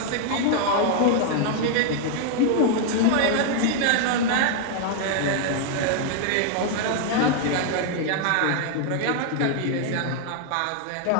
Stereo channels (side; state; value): both; different; correlation 0.00